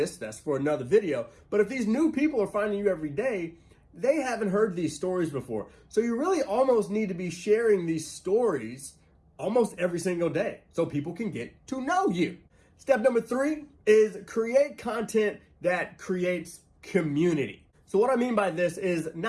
That's for another video. But if these new people are finding you every day, they haven't heard these stories before. So you really almost need to be sharing these stories almost every single day so people can get to know you. Step number 3 is create content that creates community. So what I mean by this is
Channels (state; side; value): identical; both; correlation 1.00